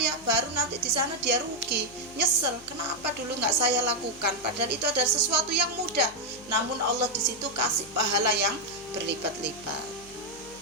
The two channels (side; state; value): left; noise; hum, 23 dB below the sound